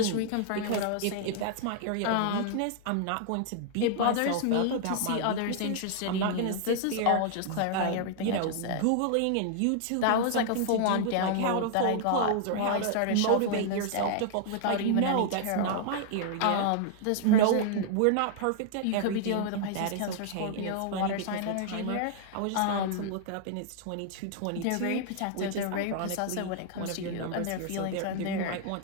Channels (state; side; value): different; both; correlation -0.01